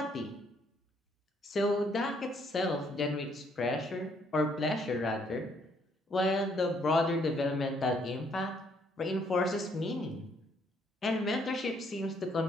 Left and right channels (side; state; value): both; normal; correlation 0.68